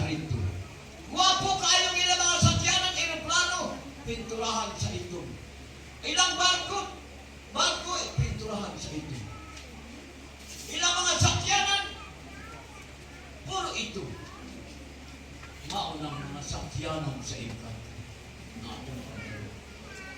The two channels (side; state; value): both; identical; correlation 1.00